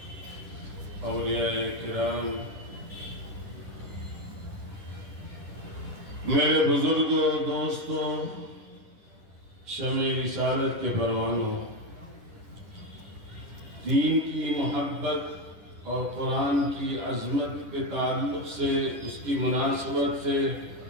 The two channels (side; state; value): left; late; 10 ms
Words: اولیاء کرام، میرے بزرگوں، دوستوں، شمع رسالت کے پروانوں، دین کی محبت اور قرآن کی عظمت کے تعلق سے، اس کی مناسبت سے